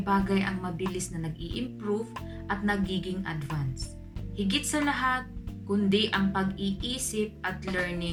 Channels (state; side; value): identical; both; correlation 1.00